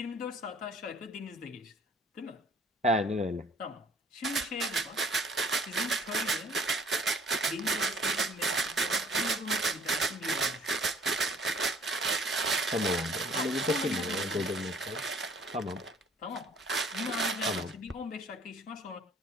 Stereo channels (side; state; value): both; normal; correlation 0.55